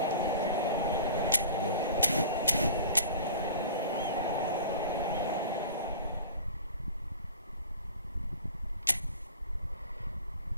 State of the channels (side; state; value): both; inverted; correlation -0.41